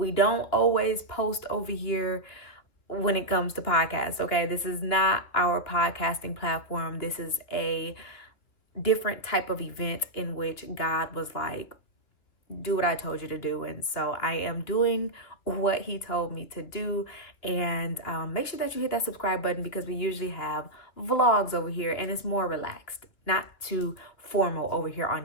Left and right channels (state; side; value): late; right; 2.9 ms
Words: don't always post over here when it comes to podcasts, okay? This is not our podcasting platform. This is a different type of event in which God was like, do what I told you to do. And so I am doing what he told me to do. And make sure that you hit that subscribe button because we usually have vlogs over here and it's more relaxed, not too formal over here on